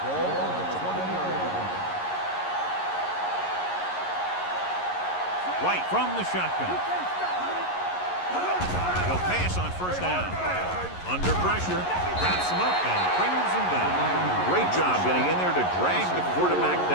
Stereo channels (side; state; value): right; late; 11 ms